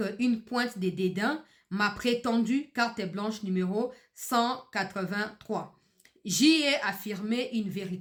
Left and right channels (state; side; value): identical; both; correlation 1.00